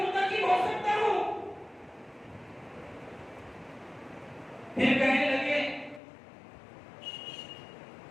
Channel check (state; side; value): drops out; right; at 6.0 s